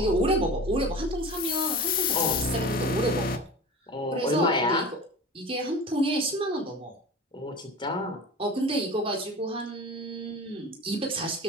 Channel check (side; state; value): both; normal; correlation 0.34